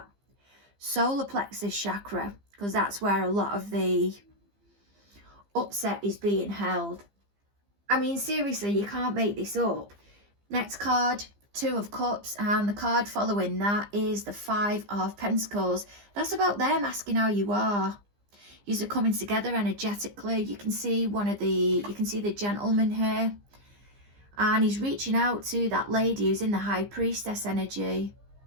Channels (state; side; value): late; left; 15 ms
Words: solar plexus chakra, because that's where a lot of the upset is being held. I mean, seriously, you can't make this up. Next card, 2 of Cups, and the card following that is the 5 of Pentacles. That's about them asking how you are. Yous are coming together energetically. You can see the gentleman here, and he's reaching out to that lady who's in the High Priestess energy.